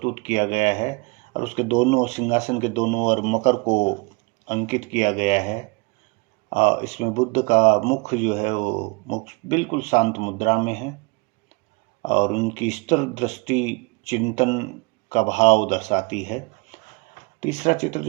किया गया है और उसके दोनों सिंहासन के दोनों ओर मकर को अंकित किया गया है। इसमें बुद्ध का मुख जो है वो मुख बिल्कुल शांत मुद्रा में है और उनकी स्थिर दृष्टि चिंतन का भाव दर्शाती है। तीसरा चित्र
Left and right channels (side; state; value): left; quieter; 27.7 dB